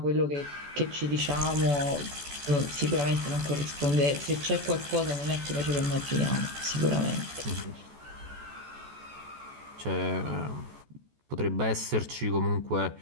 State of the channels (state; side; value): late; left; 14 ms